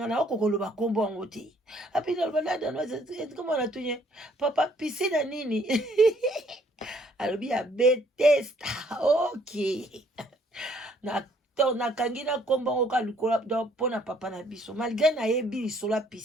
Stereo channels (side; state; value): both; normal; correlation 0.64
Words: na okokoloba kombo yango te api naloba la danoise komona tunye papa piscine ya nini alobi ya Bethesda. Ok na nakangi na kombo ngo ka likola pona papa na biso malgré na yebi lisola